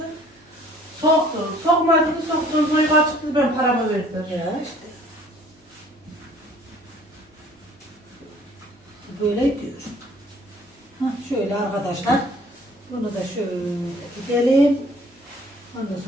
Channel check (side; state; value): both; normal; correlation 0.55